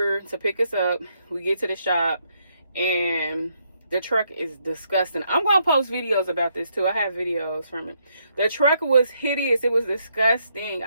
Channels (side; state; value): both; inverted; correlation -0.75